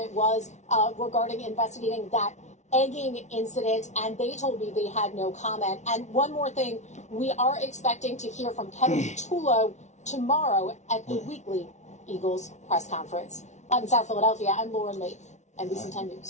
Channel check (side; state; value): right; late; 0.33 ms